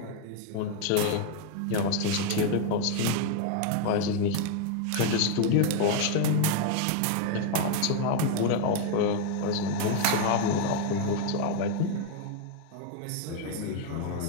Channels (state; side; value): different; both; correlation 0.01